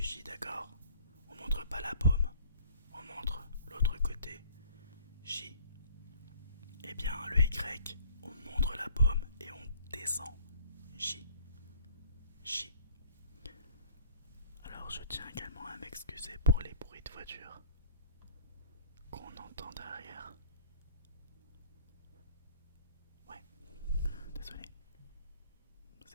d'accord. On montre pas la paume. On montre l'autre côté. J. Eh bien, le Y, on montre la paume et on descend. J. J. Alors, je tiens également à m'excuser pour les bruits de voiture qu'on entend derrière. Ouais, désolé.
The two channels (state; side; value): inverted; both; correlation -0.54